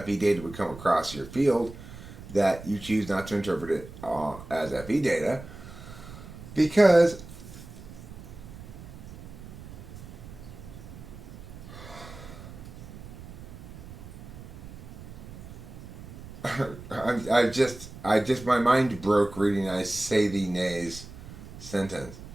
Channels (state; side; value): noise; right; rumble, 14 dB below the sound